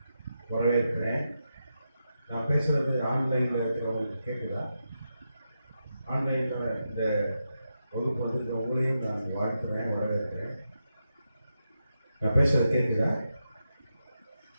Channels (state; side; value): inverted; both; correlation -0.87